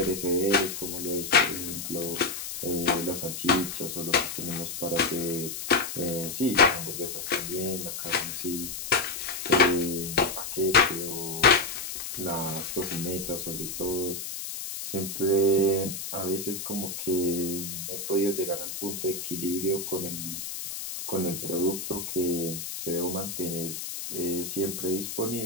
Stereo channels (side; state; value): left; noise; hiss, 6 dB below the sound